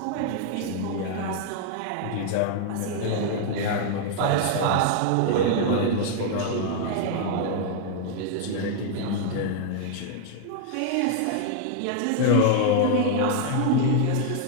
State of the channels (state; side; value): different; both; correlation 0.00